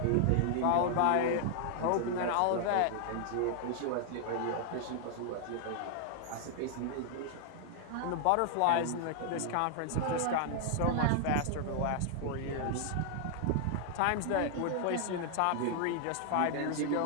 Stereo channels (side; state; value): both; different; correlation 0.00